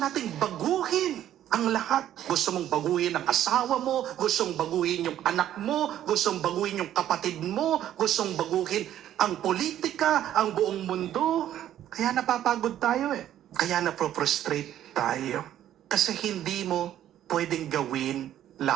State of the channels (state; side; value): quieter; left; 11.6 dB